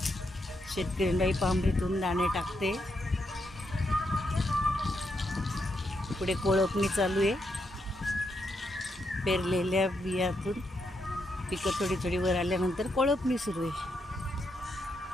शेतकरी बाई पांभरीतून दाणे टाकते. पुढे कोळपणी चालू आहे. पेरलेल्या बियातून पिकं थोडी थोडी वर आल्यानंतर कोळपणी सुरू आहे.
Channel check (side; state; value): both; normal; correlation 0.81